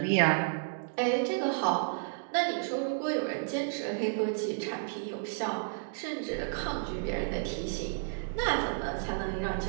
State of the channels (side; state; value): left; silent; digital silence